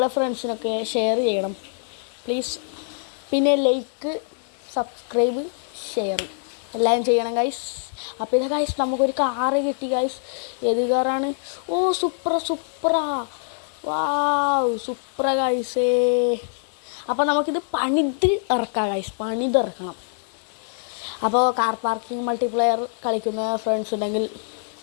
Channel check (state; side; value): silent; right; 60 dB below the other